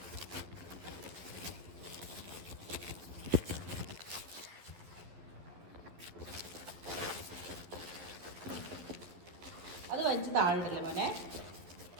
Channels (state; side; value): late; left; 12 ms